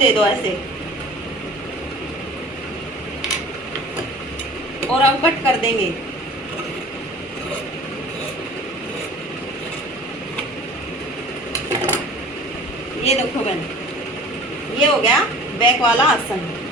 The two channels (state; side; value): normal; both; correlation 0.45